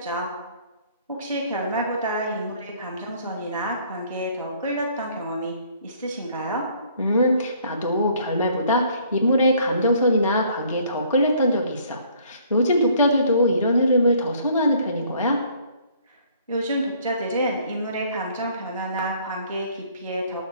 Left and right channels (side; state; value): both; inverted; correlation -0.60